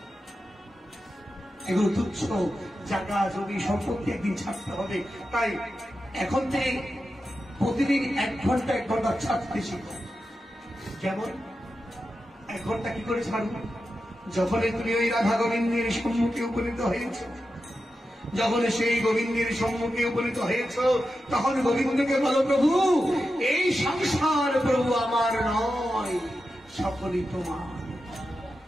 এগুলো তুচ্ছ জায়গা জমি সম্পত্তি একদিন ছাড়তে হবে। তাই এখন থেকে প্রতিদিন 1 ঘন্টা 1 ঘন্টা ছাড়তে শিখো। যেমন 1 ঘন্টা কি করে ছাড়ো? যখনই তুমি ওই রাধা গোবিন্দের সম্মুখে উপনীত হয়েছ, যখন সেই গোবিন্দের সম্মুখে উপনীত হয়েছ, তখন গোবিন্দকে বলো, প্রভু এই সংসার প্রভু আমার নয়, সকলই তোমার,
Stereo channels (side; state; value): both; normal; correlation 0.90